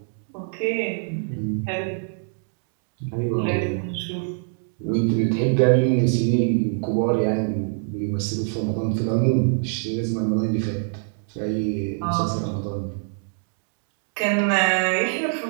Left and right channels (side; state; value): left; silent; 62 dB below the other